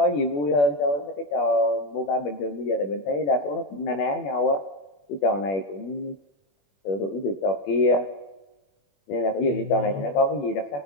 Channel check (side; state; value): right; late; 21 ms